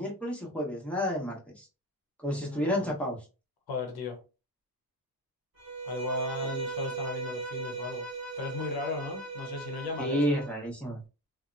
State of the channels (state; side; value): normal; both; correlation 0.25